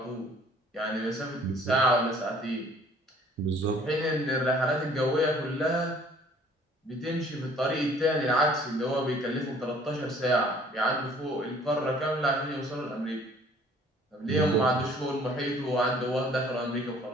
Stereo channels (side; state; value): both; normal; correlation 0.55